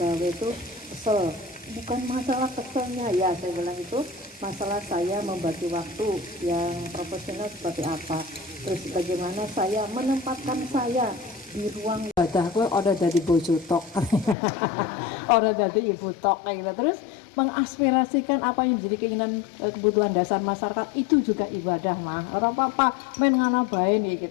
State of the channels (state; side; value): drops out; right; at 14.4 s